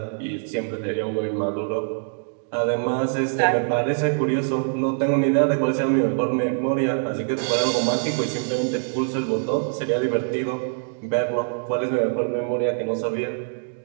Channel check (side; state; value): left; silent; digital silence